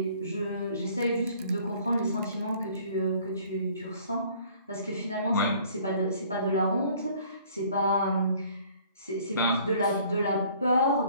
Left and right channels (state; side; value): inverted; both; correlation -0.56